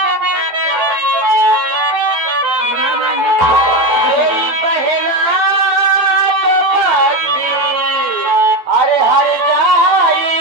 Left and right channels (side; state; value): left; late; 12 ms